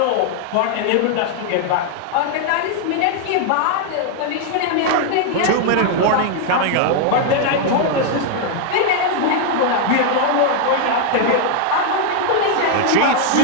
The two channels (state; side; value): different; both; correlation 0.00